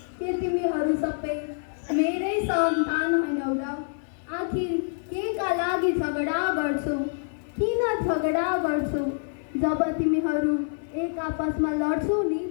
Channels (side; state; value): right; silent; digital silence